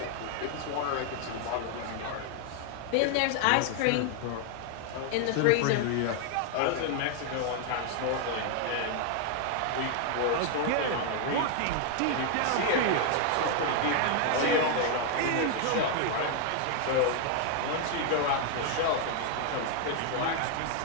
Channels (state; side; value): different; both; correlation 0.00